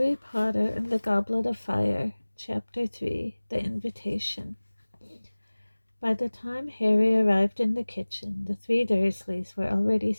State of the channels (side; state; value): both; inverted; correlation -1.00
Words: Potter and the Goblet of Fire, Chapter 3, The Invitation. By the time Harry arrived in the kitchen, the three Dursleys were already